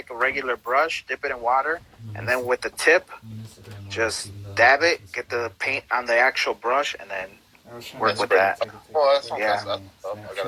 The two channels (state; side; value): identical; both; correlation 1.00